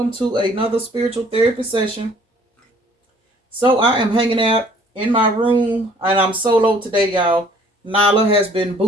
to another spiritual therapy session. So I am hanging out in my room and I'm solo today, y'all. Nala has been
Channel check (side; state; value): both; normal; correlation 0.56